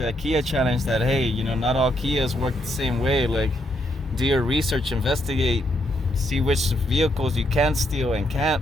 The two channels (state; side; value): normal; both; correlation 0.76